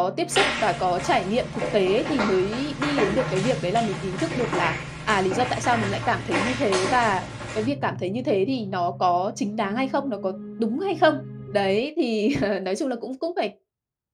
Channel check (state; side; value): identical; both; correlation 1.00